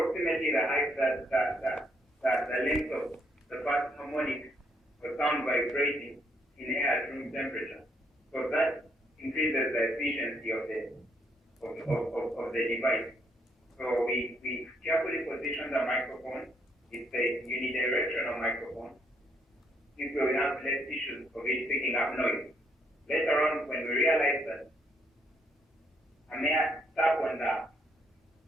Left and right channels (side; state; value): both; normal; correlation 0.72